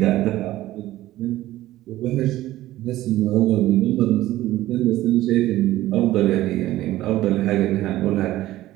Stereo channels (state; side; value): quieter; left; 15.5 dB